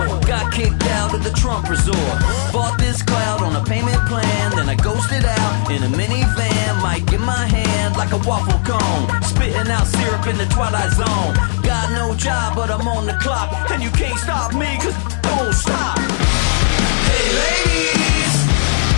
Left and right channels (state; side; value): silent; right; 66 dB below the other